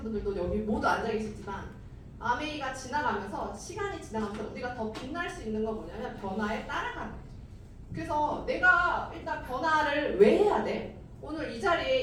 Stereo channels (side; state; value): both; identical; correlation 1.00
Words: 분들도 여기 모두 앉아 계시지만, 아메이가 지나가면서, 시간이 지나가면서 우리가 더 빛날 수 있는 건 뭐냐면 변화에 따라가는 거죠. 그래서 내가 일단 변화를 왜 해야 돼? 오늘 이 자리에